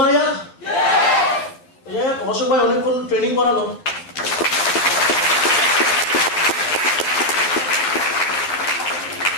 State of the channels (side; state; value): right; late; 12 ms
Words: यार অশোক ভাই অনেকক্ষণ ট্রেনিং করালো